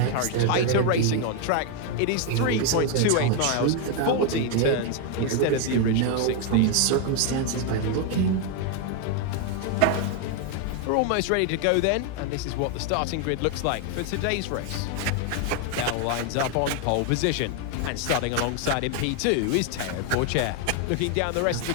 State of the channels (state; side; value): different; both; correlation 0.01